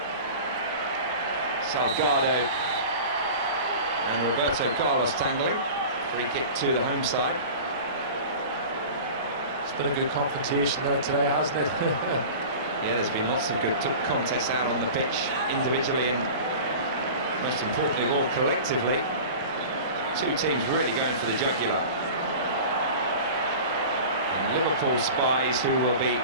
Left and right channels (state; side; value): inverted; both; correlation -0.36